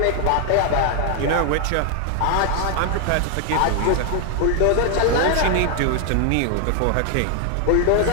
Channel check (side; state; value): both; different; correlation 0.00